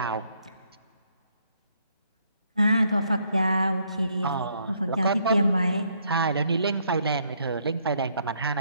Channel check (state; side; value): inverted; both; correlation -0.70